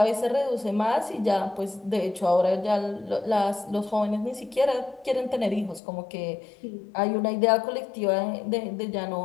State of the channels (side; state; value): right; drops out; at 5.8 s